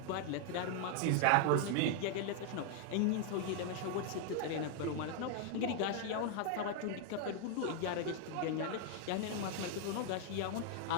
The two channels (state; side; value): different; both; correlation 0.00